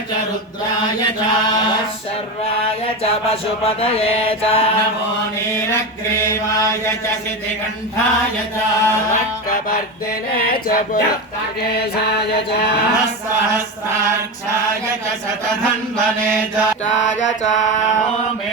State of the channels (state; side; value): normal; both; correlation 0.20